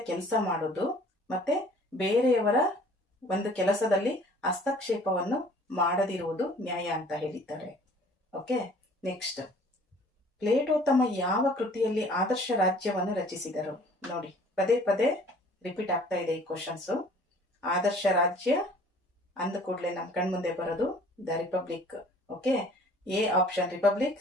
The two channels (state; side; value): normal; both; correlation 0.52